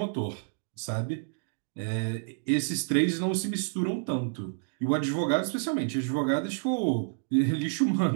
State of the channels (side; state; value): left; silent; digital silence